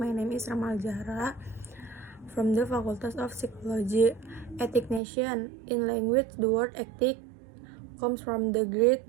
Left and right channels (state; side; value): drops out; left; at 5.0 s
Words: name is Ramal Zahra from the Faculty of Psychology. Ethication. In language, the word ethic comes from the Greek